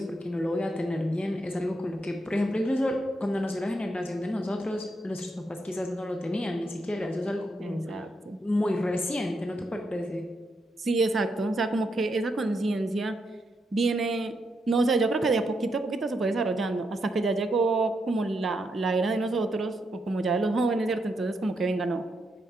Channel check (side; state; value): both; normal; correlation 0.81